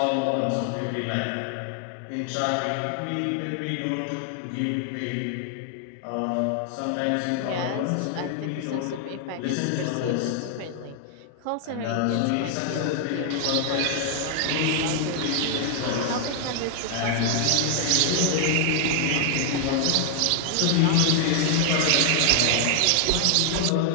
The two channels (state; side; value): different; both; correlation 0.00